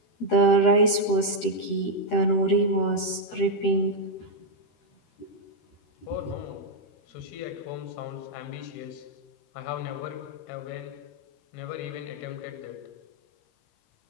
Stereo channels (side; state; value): right; late; 13 ms